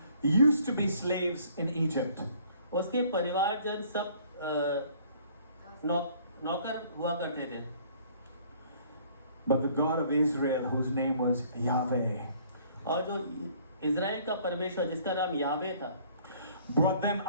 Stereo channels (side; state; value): both; inverted; correlation -0.58